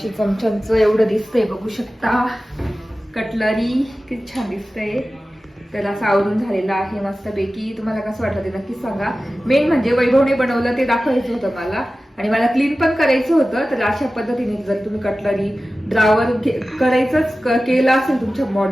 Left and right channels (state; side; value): normal; both; correlation 0.95